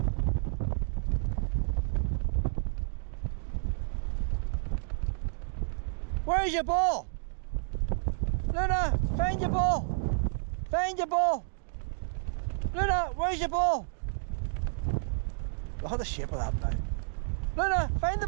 Where's your ball? Luna, find your ball. Find your ball. Luna, where's your ball? Look at the shape of that now. Luna, find the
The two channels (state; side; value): silent; left; digital silence